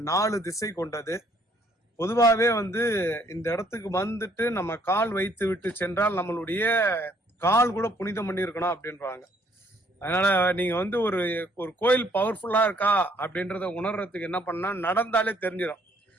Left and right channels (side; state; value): both; normal; correlation 0.64